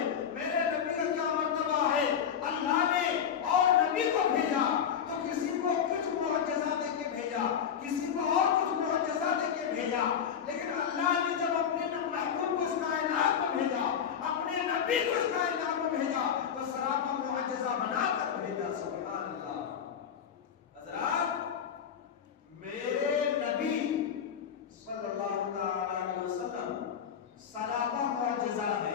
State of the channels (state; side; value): quieter; right; 8.0 dB